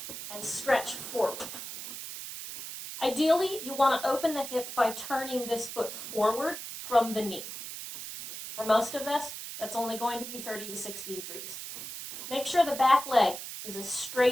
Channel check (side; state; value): right; noise; hiss, 9 dB below the sound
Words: and stretch forward. Ideally, you want to open the hip by turning this foot forward from the knee. For most of this, that's only going to be 30 to 60 degrees. Make sure the back leg is as